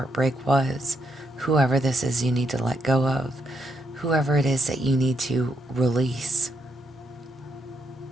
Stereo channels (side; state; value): both; normal; correlation 0.78